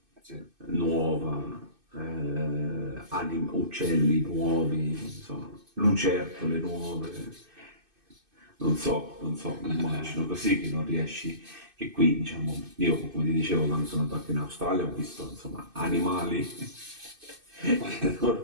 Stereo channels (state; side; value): late; left; 2.6 ms